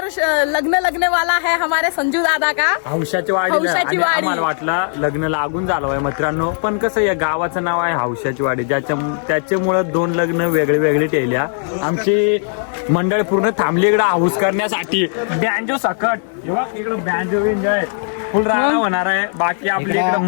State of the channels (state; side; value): silent; right; 68 dB below the other